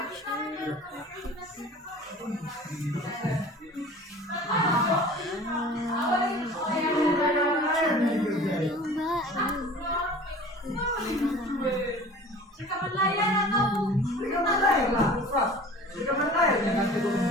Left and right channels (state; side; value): normal; both; correlation 0.43